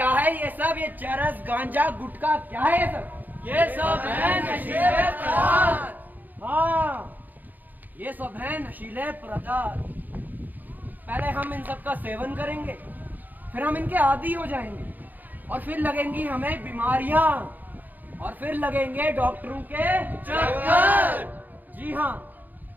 है ये सब? ये चरस, गांजा, गुटखा क्या है ये सब है नशीले पदार्थ। हाँ, ये सब है नशीले पदार्थ। पहले हम इन सब का सेवन करेंगे, फिर हम इनके आदी हो जाएंगे और फिर लगेंगी हमें बीमारियां और फिर लगेंगे डॉक्टरों के चक्कर। जी हाँ,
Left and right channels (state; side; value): late; left; 0.084 ms